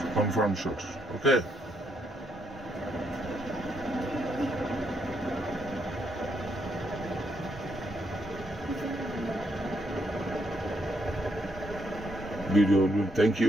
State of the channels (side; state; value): both; normal; correlation 0.75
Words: confirm shot. Okay. Video. Thank